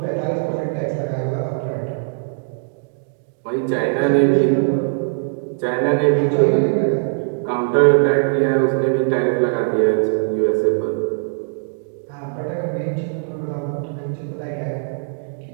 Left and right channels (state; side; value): silent; left; digital silence